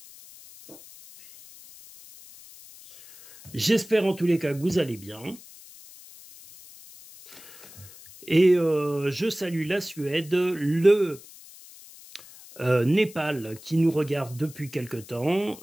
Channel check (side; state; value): left; noise; hiss, 20 dB below the sound